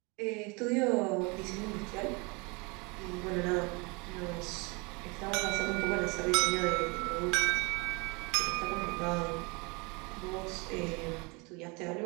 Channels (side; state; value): left; quieter; 28.9 dB